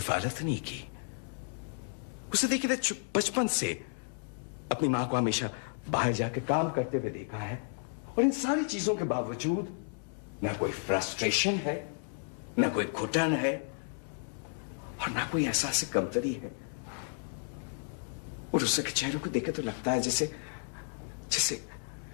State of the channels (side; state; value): right; silent; digital silence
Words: नहीं की। उसे देखिए बचपन से अपनी मां को हमेशा बाहर जाके काम करते हुए देखा है, और इन सारी चीजों के बावजूद ना कोई फ्रस्ट्रेशन है, ना कोई घुटन है, और ना कोई एहसास कमतरी है। और उषा के चेहरे को देखे तो लगता है जैसे जैसे